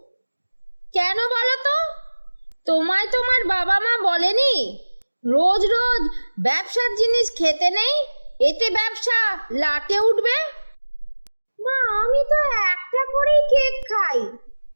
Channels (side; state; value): both; inverted; correlation -1.00